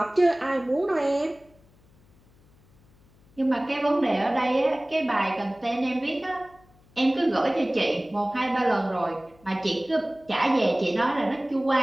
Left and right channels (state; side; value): noise; left; hum, 30 dB below the sound